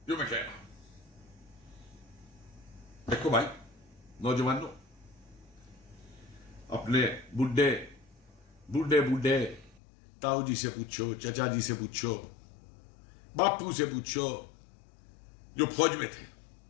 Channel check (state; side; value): drops out; right; at 9.8 s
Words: जो मैं कह रहा हूं। देखो भाई नौजवानों, अपने बूढ़े बूढ़े बूढ़े ताऊ जी से पूछो, चचा जी से पूछो, बापू से पूछो, जो फौज में थे,